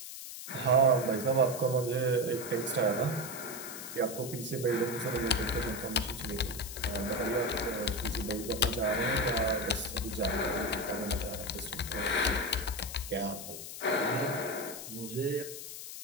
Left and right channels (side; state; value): left; noise; hiss, 9 dB below the sound